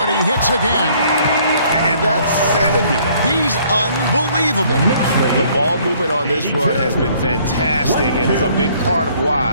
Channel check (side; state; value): both; inverted; correlation -0.61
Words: he hits again. And that's 70. He's unbelievable. The ball movement on this run has been fantastic and is a big part of